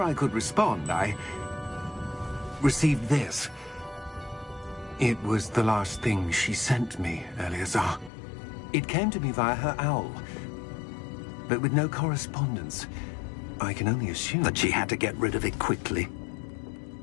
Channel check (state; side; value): drops out; right; at 8.1 s